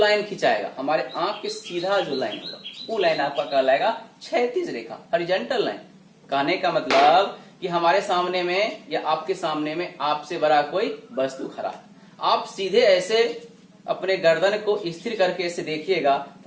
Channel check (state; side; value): identical; both; correlation 1.00